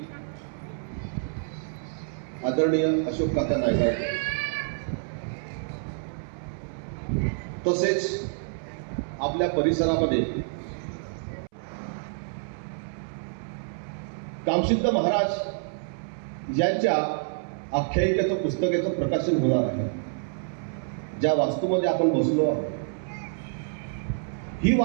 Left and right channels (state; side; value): silent; left; 60 dB below the other